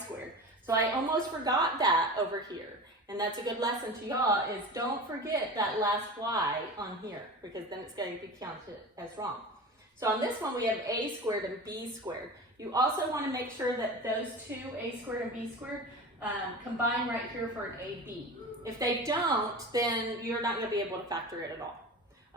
So I almost forgot that over here. And that's a good lesson to y'all, is don't forget that last y on here, because then it's going to be counted as wrong. So on this one, we have a squared and b squared. You also want to make sure that those two, a squared and b squared, combine right here for an ab. If they don't, then you're not going to be able to factor it at all.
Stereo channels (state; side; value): normal; both; correlation 0.32